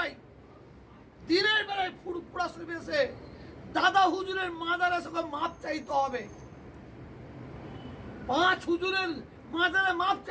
ফুরফুরা শরীফে এসে দাদা হুজুরের মাজারে সঙ্গে মাপ চাইতে হবে। 5 হুজুরের মাজারে মাপ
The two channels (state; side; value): identical; both; correlation 1.00